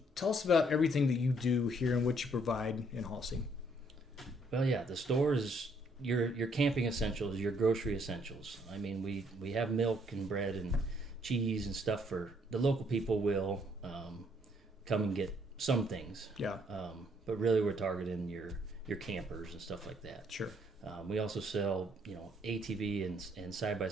tell us about everything that you do here and what you provide in Halsey. Well, yeah, the store is your camping essentials, your grocery essentials. I mean, we have milk and bread and cheese and stuff for the local people will come and get some things. Yeah. But really we're targeting your campers and stuff like that. Sure. We also sell, ATV and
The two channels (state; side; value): normal; both; correlation 0.68